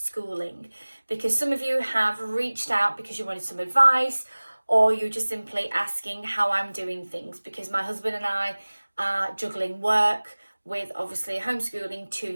because some of you have reached out because you wanted some advice, or you're just simply asking how I'm doing things, because my husband and I are juggling work with obviously homeschooling two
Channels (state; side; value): inverted; both; correlation -1.00